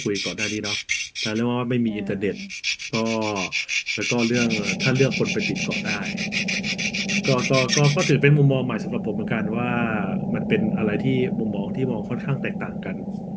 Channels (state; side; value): identical; both; correlation 1.00